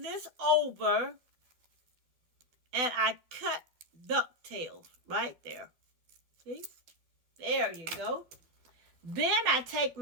this over and I cut ducktails right there. See? There you go. Then I take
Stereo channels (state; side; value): late; left; 12 ms